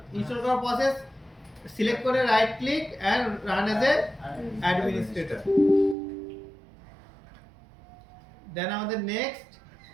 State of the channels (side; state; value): left; drops out; at 6.0 s